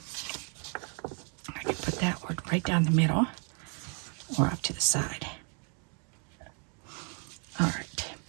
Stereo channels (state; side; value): quieter; left; 39.3 dB